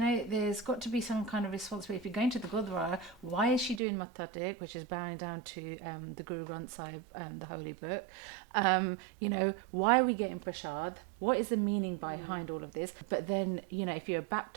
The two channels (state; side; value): drops out; left; at 3.8 s